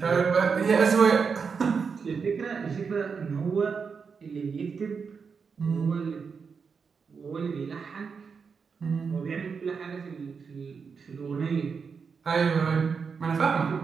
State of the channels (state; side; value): quieter; left; 5.7 dB